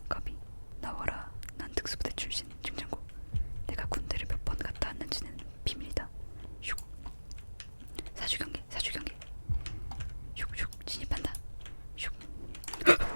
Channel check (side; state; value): both; inverted; correlation -1.00